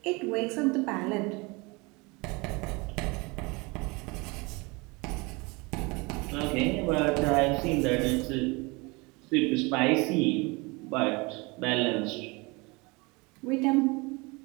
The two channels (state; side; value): quieter; left; 26.6 dB